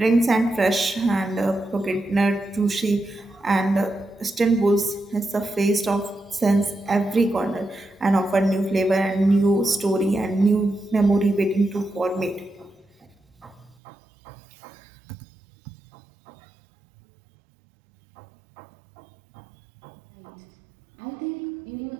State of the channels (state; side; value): drops out; left; at 13.8 s